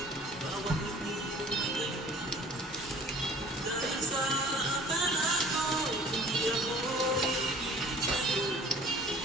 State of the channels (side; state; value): both; normal; correlation 0.48